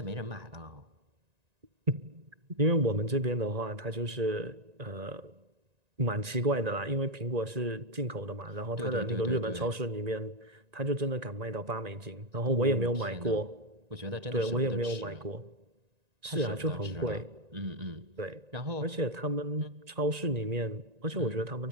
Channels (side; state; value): left; late; 1.9 ms